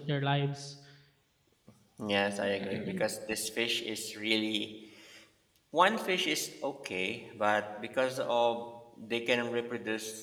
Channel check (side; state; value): both; identical; correlation 1.00